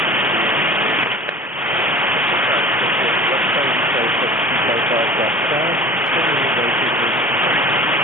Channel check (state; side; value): normal; both; correlation 0.41